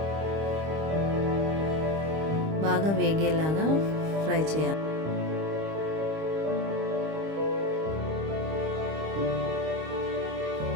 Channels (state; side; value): late; left; 25 ms